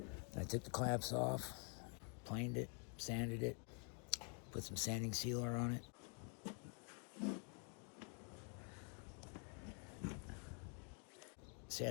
I took the clamps off, planed it, sanded it, put some sanding sealer on it.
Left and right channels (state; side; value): quieter; right; 39.0 dB